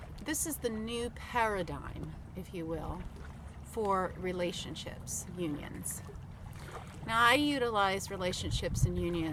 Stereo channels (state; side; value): identical; both; correlation 1.00